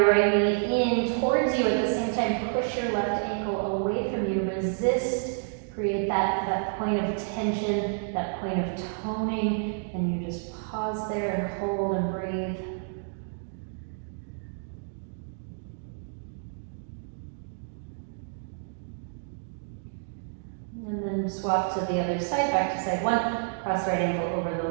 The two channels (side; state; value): left; silent; digital silence